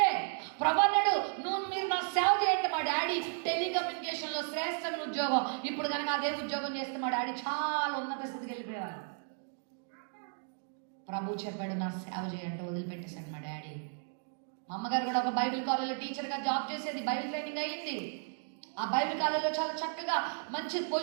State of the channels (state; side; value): silent; left; 55 dB below the other